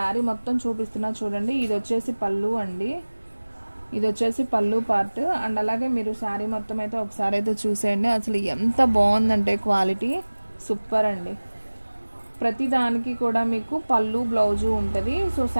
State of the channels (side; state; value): both; inverted; correlation -1.00